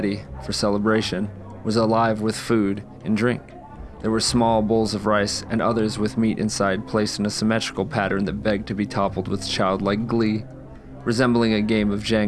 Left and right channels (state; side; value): identical; both; correlation 1.00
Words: for celebration was alive with food and drink. There were small bowls of rice and others with meat inside placed in a symmetrical pattern that begged to be toppled with childlike glee, resembling a game of